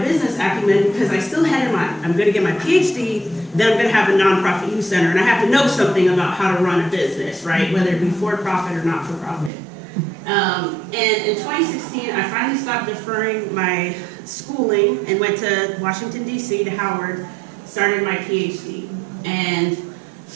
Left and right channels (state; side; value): drops out; left; at 9.5 s